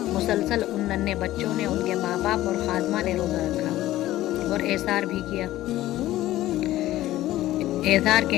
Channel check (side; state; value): right; quieter; 15.2 dB